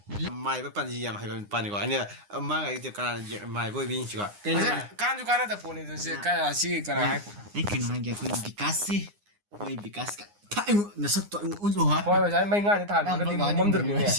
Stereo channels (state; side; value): late; left; 9.8 ms